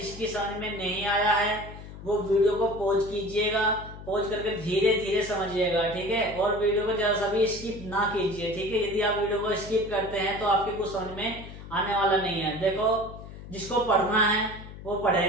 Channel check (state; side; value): noise; left; hum, 14 dB below the sound